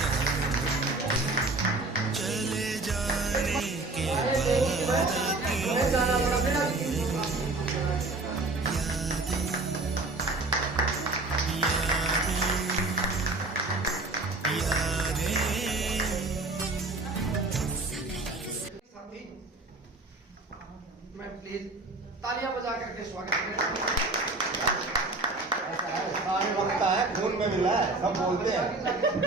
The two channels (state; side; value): quieter; left; 3.1 dB